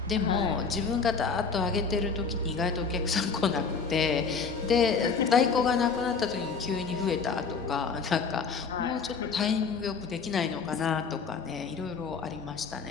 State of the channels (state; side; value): quieter; right; 5.3 dB